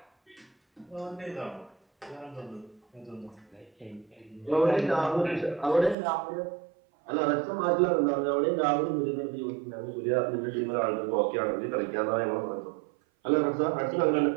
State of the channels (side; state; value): left; drops out; at 6.0 s